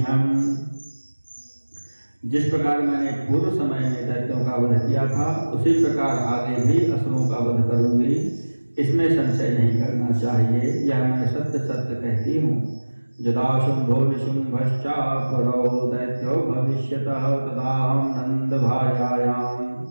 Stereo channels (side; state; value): both; inverted; correlation -1.00